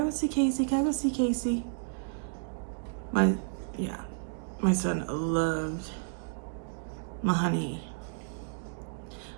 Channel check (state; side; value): silent; left; digital silence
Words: go see Casey? Can I go see Casey? My son loved my honey.